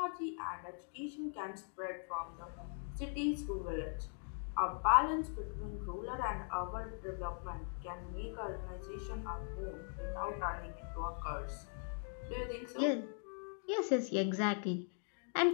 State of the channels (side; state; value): right; silent; 51 dB below the other